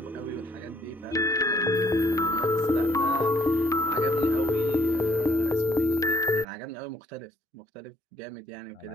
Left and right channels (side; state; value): both; normal; correlation 0.65